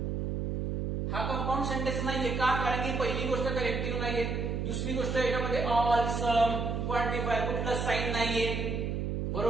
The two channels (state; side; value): noise; right; hum, 1 dB below the sound